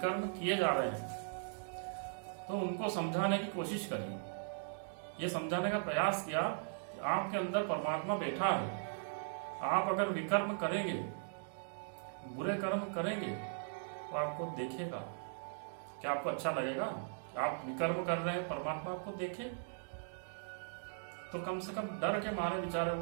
किए जा रहे हैं, तो उनको समझाने की कोशिश करी। ये समझाने का प्रयास किया कि आपके अंदर परमात्मा बैठा है। आप अगर विकर्म करेंगे, बुरे कर्म करेंगे, तो आपको देखेगा। क्या आपको अच्छा लगेगा? आप विकर्म कर रहे हैं, परमात्मा आपको देखे? तो कम से कम डर के मारे बेचारे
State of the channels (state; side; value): silent; left; digital silence